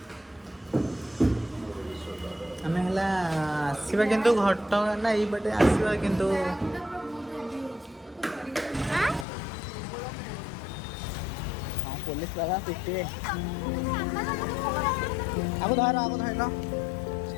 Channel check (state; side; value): drops out; right; at 9.2 s